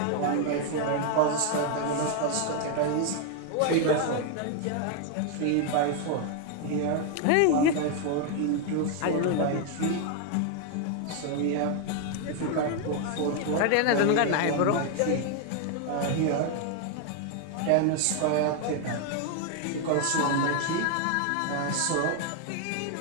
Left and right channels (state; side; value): different; both; correlation 0.00